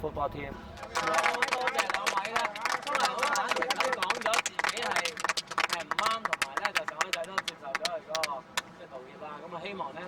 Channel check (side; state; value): both; identical; correlation 1.00